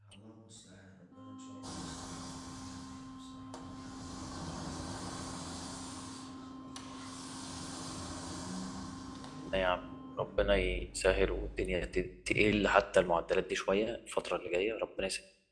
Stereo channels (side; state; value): both; identical; correlation 1.00